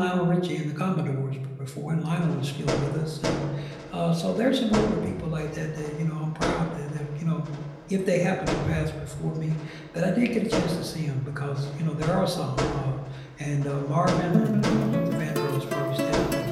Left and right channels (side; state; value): both; identical; correlation 1.00